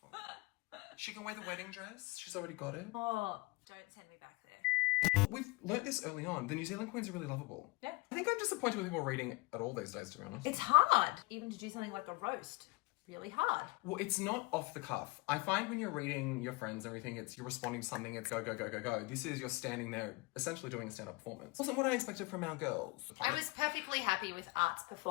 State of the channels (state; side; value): quieter; right; 23.8 dB